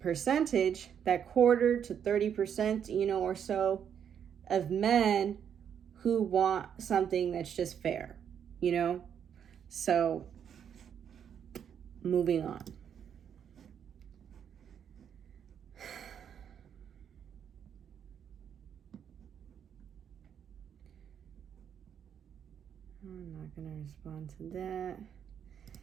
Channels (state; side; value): quieter; left; 8.4 dB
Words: that quarter to 30%, or so of men who want something that's just fair, So, moving on. I'm not going to respond to that.